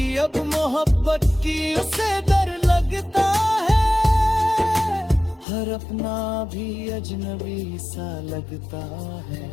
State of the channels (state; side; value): drops out; right; at 5.5 s